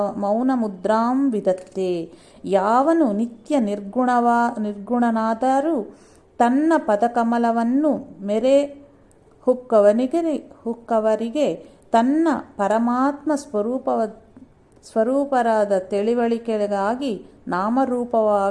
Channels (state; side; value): identical; both; correlation 1.00